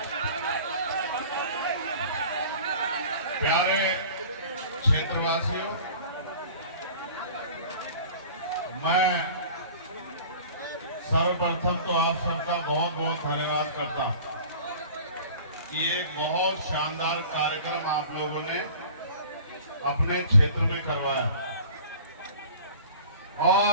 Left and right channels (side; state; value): both; inverted; correlation -0.44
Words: प्यारे क्षेत्रवासियों, मैं सर्वप्रथम तो आप सबका बहुत बहुत धन्यवाद करता हूं। ये एक बहुत शानदार कार्यक्रम आप लोगों ने अपने क्षेत्र में करवाया